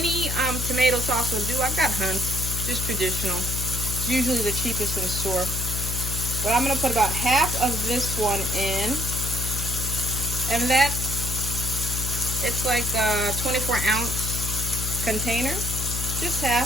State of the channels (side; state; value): left; noise; hum, 3 dB below the sound